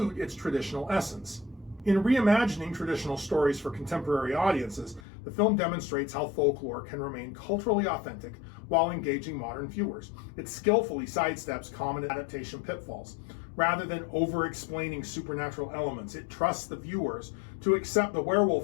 its traditional essence. In reimagining traditional stories for contemporary audiences, the film demonstrates how folklore can remain culturally authentic while engaging modern viewers. It skillfully sidesteps common adaptation pitfalls. Rather than over-explaining supernatural elements, it trusts the viewers to accept the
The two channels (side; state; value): right; drops out; at 5.0 s